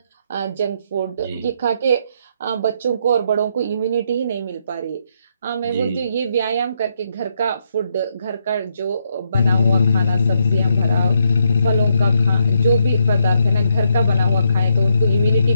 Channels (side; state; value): both; inverted; correlation -0.76